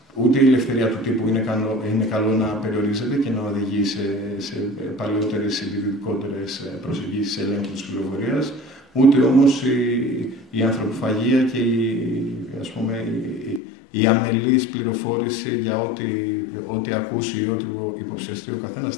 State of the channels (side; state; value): right; drops out; at 13.6 s